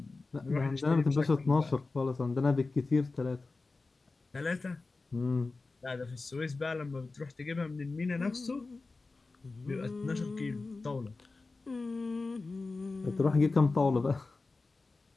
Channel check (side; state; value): right; quieter; 3.7 dB